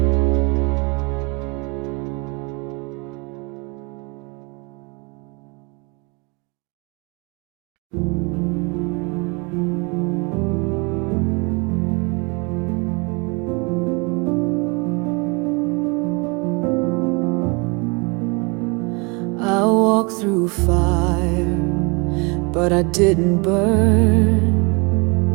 I walked through fire, but I didn't burn.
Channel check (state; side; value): quieter; left; 30.4 dB